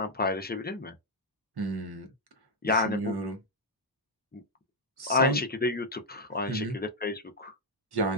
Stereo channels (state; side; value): normal; both; correlation 0.00